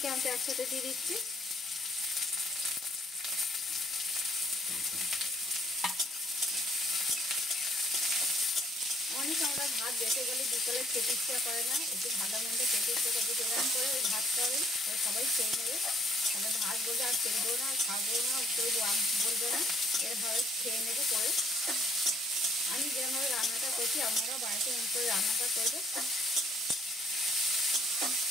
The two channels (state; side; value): normal; both; correlation 0.63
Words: একসাথে দিয়ে দিচ্ছি। অনেক আমরা ভাত বেঁচে গেলে বিকেলে খেতে ইচ্ছা করে না, একটু ভালো মন্দ খেতে ইচ্ছা করে, এরকম করে ওই ভাতটা হবে সবাই খেয়ে নেবে। তাহলে ভাত বলবে আর খেলবো না, খাবো না, কেউ বলবে না, এরভাবে খেয়ে নেবে করে। আমি যেভাবে রান্নাটা করছি আপনারাও বাড়িতে এমন করে রান্নাটা করবে।